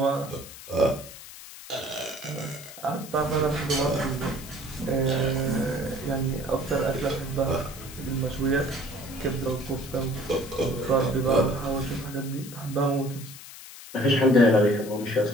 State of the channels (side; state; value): left; noise; hiss, 15 dB below the sound